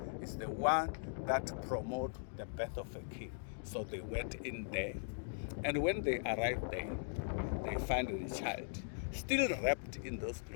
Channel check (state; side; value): silent; right; digital silence